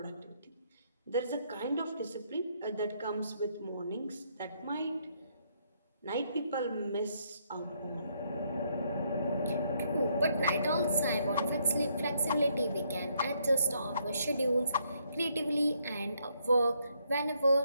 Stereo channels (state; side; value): inverted; both; correlation -0.72